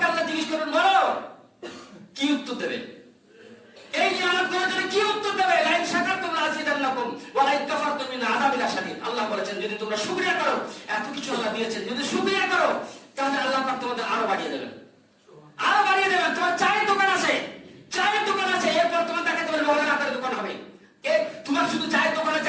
আল্লাহ জিজ্ঞেস করবেন, বলো কি উত্তর দেবে? এই নিয়ামত গুলোর জন্য কি উত্তর দেবে? লাইন শাকারতুম লাযিদান্নাকুম ওয়া লাইন কাফারতুম মিন আযাবিল শাদীদ। আল্লাহ বলেছেন যদি তোমরা শুকরিয়া করো, এত কিছু আল্লাহ দিয়েছেন, যদি শুকরিয়া করো তাহলে আল্লাহ পাক তোমাদের আরো বাড়িয়ে দেবেন, আরো বাড়িয়ে দেবেন। তোমার চায়ের দোকান আছে, চায়ের দোকান আছে, এরপর তোমার তাকে তোমার লোহার আটার দোকান হবে। তোমার শুধু চায়ের দোকান আছে,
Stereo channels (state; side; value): identical; both; correlation 1.00